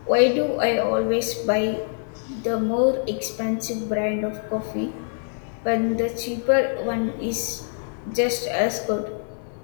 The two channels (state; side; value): silent; right; 62 dB below the other